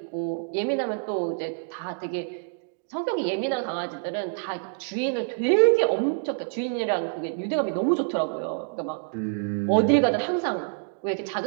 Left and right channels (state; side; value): silent; left; digital silence